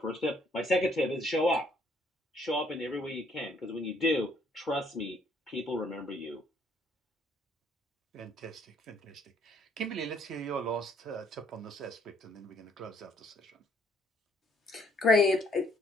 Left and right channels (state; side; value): normal; both; correlation 0.65